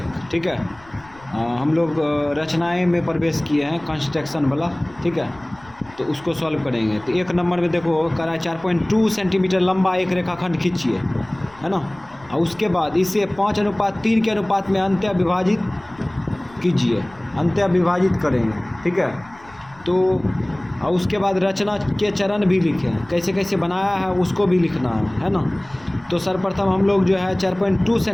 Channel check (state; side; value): noise; left; rumble, 25 dB below the sound